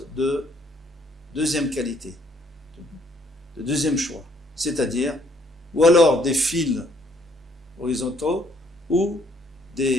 de deuxième qualité, de deuxième choix, c'est-à-dire, ou alors des fils horizontaux, ou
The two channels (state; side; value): normal; both; correlation 0.66